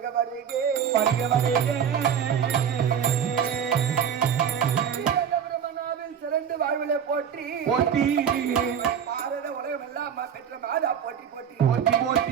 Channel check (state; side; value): quieter; left; 8.1 dB